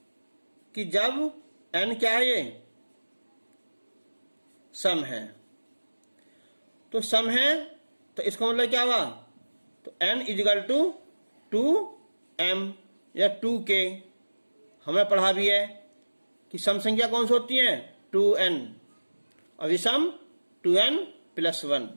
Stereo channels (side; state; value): both; inverted; correlation -1.00